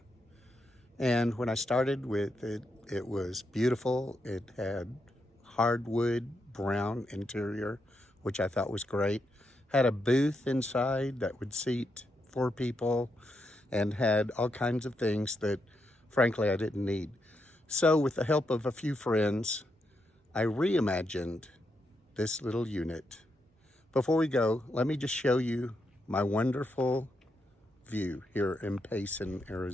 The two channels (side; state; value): both; normal; correlation 0.82